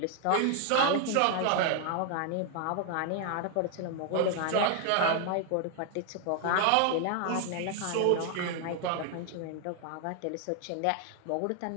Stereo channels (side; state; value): both; different; correlation 0.00